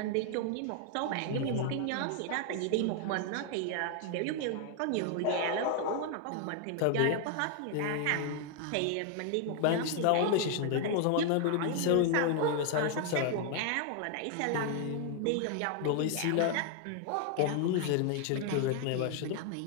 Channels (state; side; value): different; both; correlation 0.00